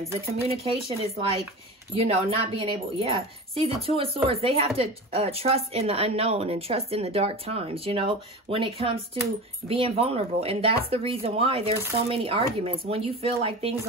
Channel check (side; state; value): both; normal; correlation 0.30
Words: The communication is like, you know, not being able, yeah. See, the Two of Swords, they have to trust in the unknown and trust in the dark times, you know, when it comes to being vulnerable. And that's the reason why there's so many arguments. When you feel like things